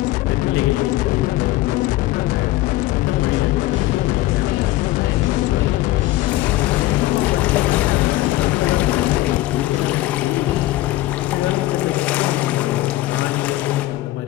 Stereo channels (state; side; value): quieter; right; 16.6 dB